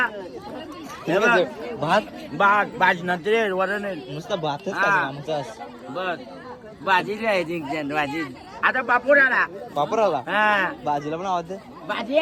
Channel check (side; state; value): both; identical; correlation 1.00